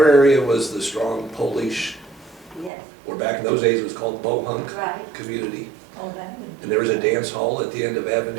area was the strong Polish, Yes, or back in those days it was called Bohunk right. community. Oh, that would. And there was a dance hall at the end of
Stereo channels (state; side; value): drops out; left; at 2.7 s